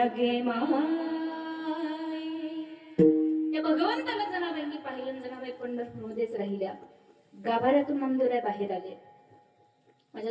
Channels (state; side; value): identical; both; correlation 1.00